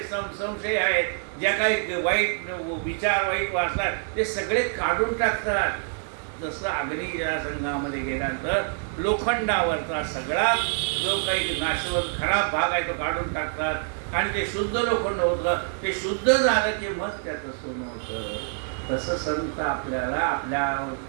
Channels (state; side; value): silent; left; 61 dB below the other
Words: संशय आहेत, ज्या काही वाईट विचार, वाईट वासनात, ते सगळे काढून टाकतात. जसं अग्नीच्या संघामध्ये गेल्यानंतर लोखंडावरचा सगळा जो काही नाशवंत खराब भाग आहे तो काढून टाकतात आणि ते शुद्ध लोखंड होतं. ते शुद्ध झालं की मग त्याचं सोनं होतं. तसं संत आपल्याला आपल्या